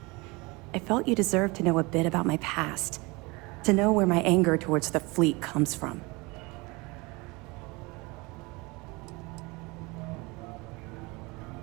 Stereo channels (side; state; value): left; quieter; 25.5 dB